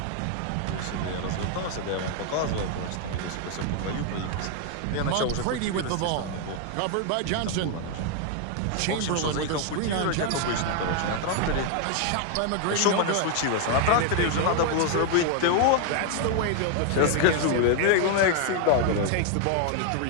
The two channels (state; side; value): different; both; correlation 0.00